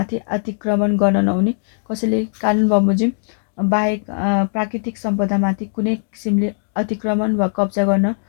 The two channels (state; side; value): silent; right; digital silence